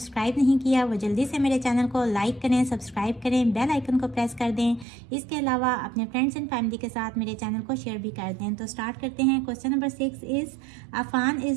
नहीं किया वो जल्दी से मेरे चैनल को लाइक करें, सब्सक्राइब करें, बेल आइकन को प्रेस कर दें। इसके अलावा अपने फ्रेंड्स एंड फैमिली के साथ मेरे चैनल को शेयर भी कर दें। तो स्टार्ट करते हैं। Question number 6 is Afan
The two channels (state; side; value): drops out; left; at 4.9 s